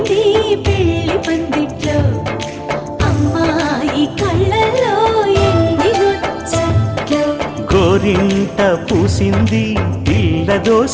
పెళ్లి పందిట్లో, అమ్మాయి కళ్ళల్లో ఎన్ని ముచ్చట్లు. గోరింట పూసింది పిల్ల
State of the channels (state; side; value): identical; both; correlation 1.00